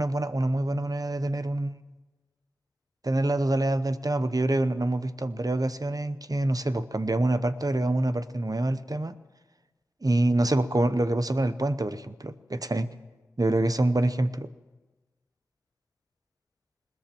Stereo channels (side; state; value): both; normal; correlation 0.93